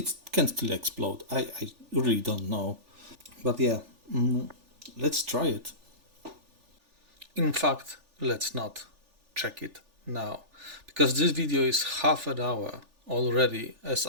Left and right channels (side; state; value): left; late; 3.4 ms